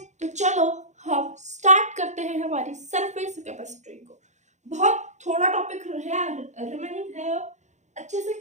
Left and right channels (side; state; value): left; late; 0.34 ms